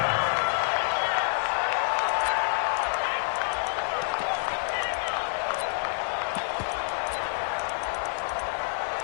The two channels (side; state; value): right; silent; 60 dB below the other